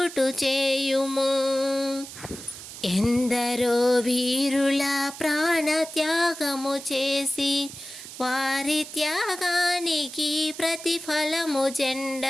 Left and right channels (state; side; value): noise; right; hiss, 13 dB below the sound